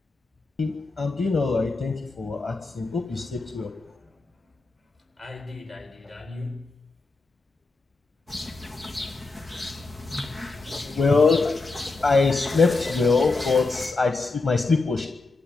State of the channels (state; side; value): quieter; right; 3.7 dB